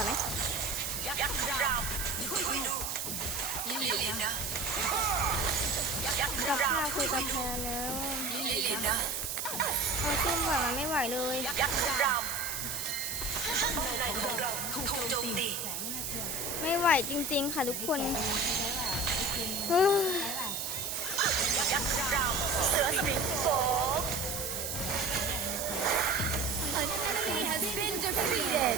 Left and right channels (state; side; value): noise; right; hiss, 3 dB below the sound